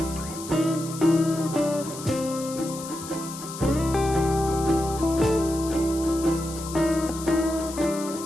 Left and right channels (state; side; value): noise; left; hiss, 12 dB below the sound